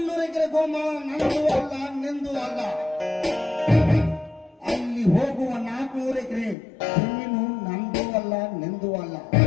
ಎಕರೆ ಗೋಮಾಳ ನಂದು ಅಲ್ಲ, ನಿಂದು ಅಲ್ಲ. ಅಲ್ಲಿ ಹೋಗುವ 400 ಎಕರೆ ಜಮೀನು ನಂದು ಅಲ್ಲ, ನಿಂದು ಅಲ್ಲ.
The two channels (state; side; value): drops out; right; at 6.6 s